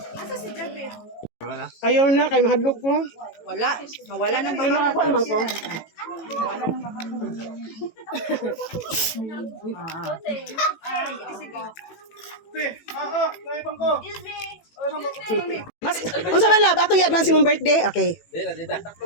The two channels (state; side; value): late; right; 18 ms